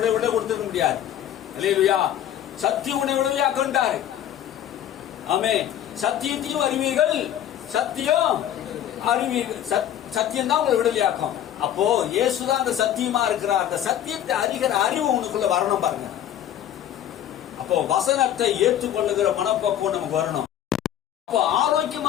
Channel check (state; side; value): quieter; right; 11.0 dB